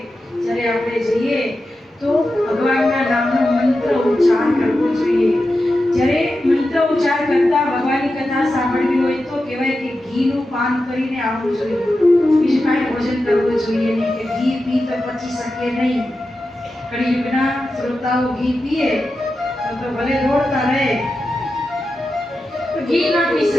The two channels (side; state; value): both; normal; correlation 0.91